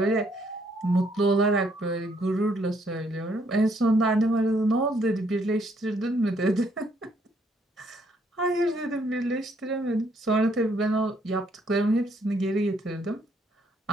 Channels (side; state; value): both; normal; correlation 0.69